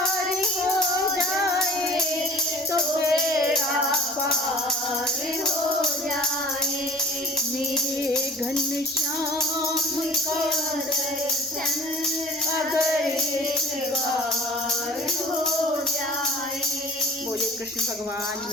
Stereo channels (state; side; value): normal; both; correlation 0.47